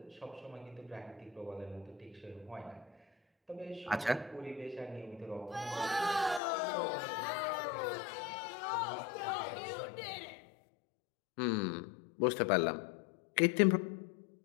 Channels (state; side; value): drops out; right; at 6.4 s